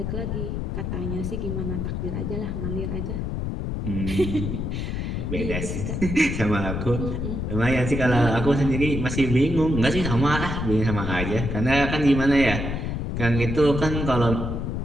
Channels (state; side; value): noise; left; rumble, 3 dB below the sound